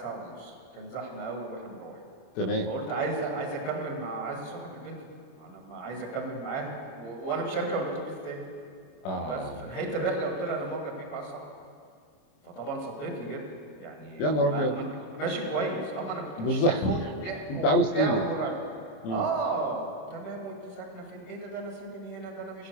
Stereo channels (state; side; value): late; right; 26 ms